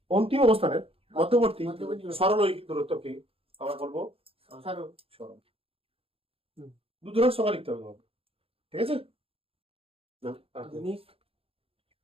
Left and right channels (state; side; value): late; left; 0.27 ms